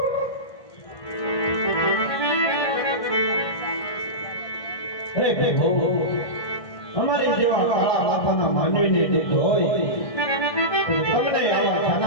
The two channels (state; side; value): late; right; 1.6 ms